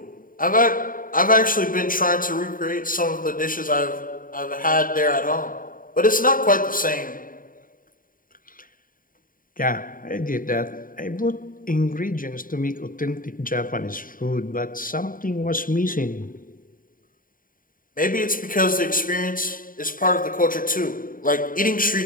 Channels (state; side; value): late; right; 0.40 ms